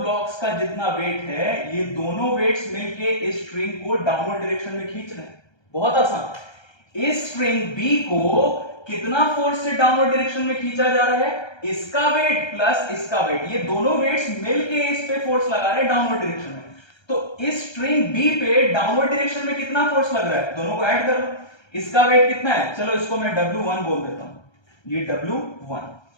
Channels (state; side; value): late; right; 1.3 ms